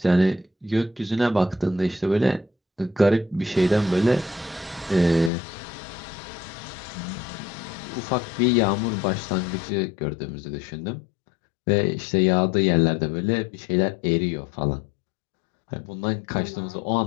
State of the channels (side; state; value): right; drops out; at 5.3 s